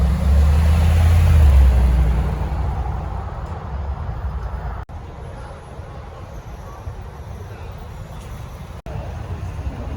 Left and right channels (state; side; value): identical; both; correlation 1.00